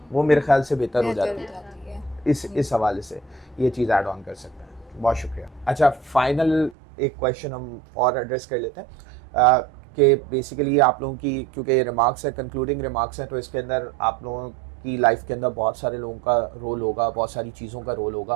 वो मेरे ख्याल से बेहतर हो जाती है। इस हवाले से ये चीज़ ऐड ऑन कर सकते हैं। बहुत शुक्रिया। अच्छा, फाइनल एक क्वेश्चन हम और एड्रेस कर लेते हैं कि बेसिकली आप लोगों की, क्योंकि ये रिमार्क्स है, कंक्लूडिंग रिमार्क्स हैं, तो इसके अंदर आप लोगों की लाइफ के अंदर बहुत सारे लोगों का रोल होगा, बहुत सारी चीज़ों का रोल होगा,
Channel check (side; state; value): left; drops out; at 6.8 s